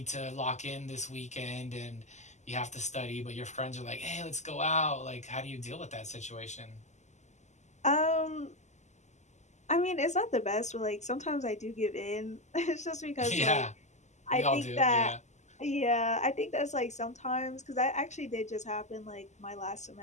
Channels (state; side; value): late; right; 0.34 ms